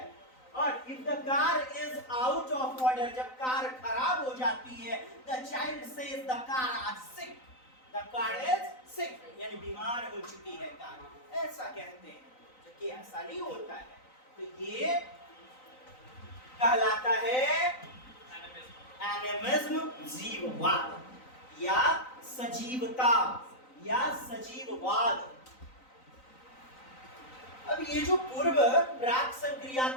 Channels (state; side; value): late; right; 3.9 ms